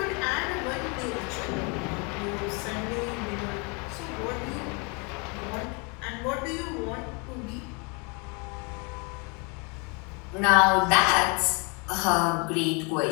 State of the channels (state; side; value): quieter; right; 32.1 dB